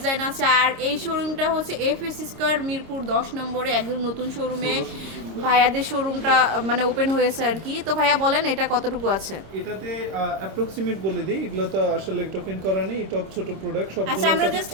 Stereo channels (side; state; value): left; late; 26 ms